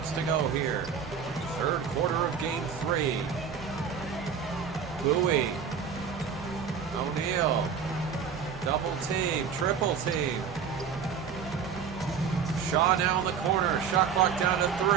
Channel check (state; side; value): quieter; left; 6.9 dB